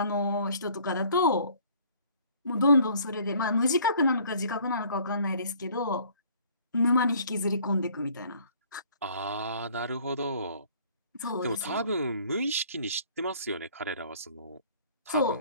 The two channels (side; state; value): both; inverted; correlation -0.56